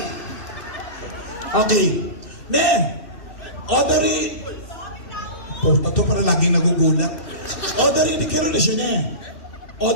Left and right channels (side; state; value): right; late; 2.6 ms